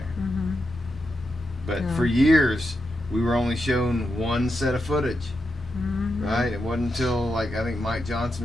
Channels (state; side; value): normal; both; correlation 0.86